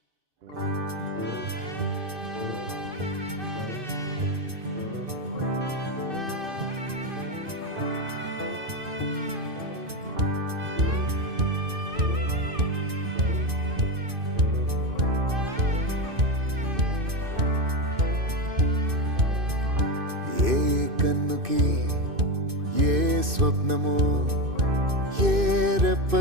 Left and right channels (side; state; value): left; late; 2.6 ms